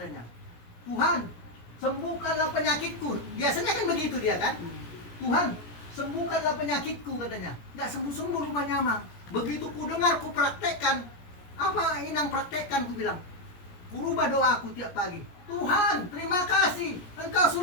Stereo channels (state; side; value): late; right; 17 ms